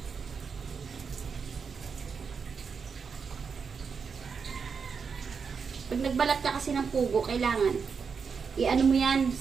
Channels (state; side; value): quieter; left; 5.8 dB